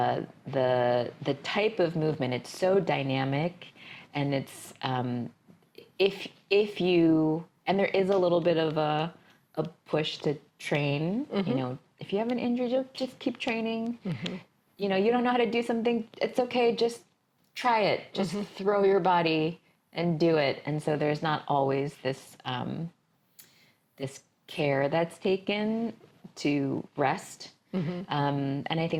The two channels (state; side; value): identical; both; correlation 1.00